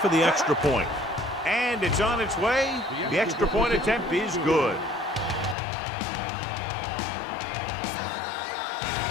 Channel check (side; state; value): right; drops out; at 5.6 s